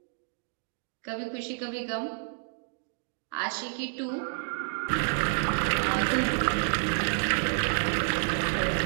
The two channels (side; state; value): left; silent; digital silence